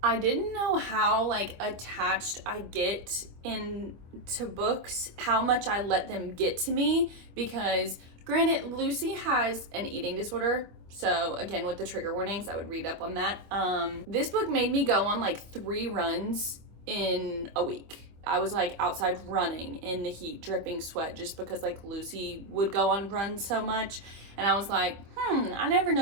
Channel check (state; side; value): late; left; 25 ms